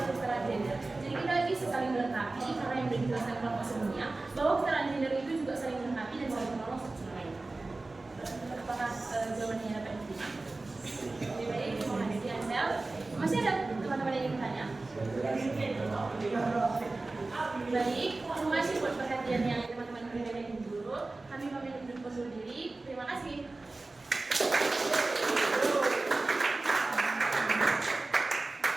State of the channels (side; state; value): left; quieter; 3.3 dB